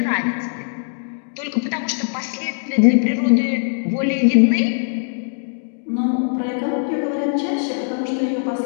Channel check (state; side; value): silent; right; digital silence